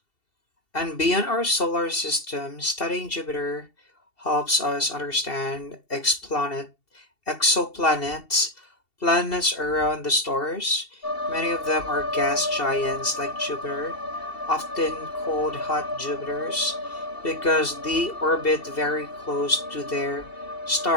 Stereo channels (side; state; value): right; late; 2.7 ms